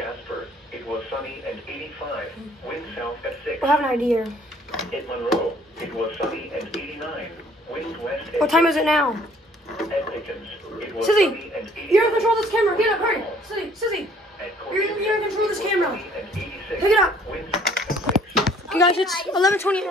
it was sunny and 85. Wind south at 6. I have an idea. At Monroe, it was sunny and 89. Wind west at What time is it now? At Pickens, it was Susie, sunny and 88. you're in control of this camera. Get up, hurry. Susie, you're in control of this camera. Pick it up. Okay, guys, it's 11:28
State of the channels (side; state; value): both; normal; correlation 0.59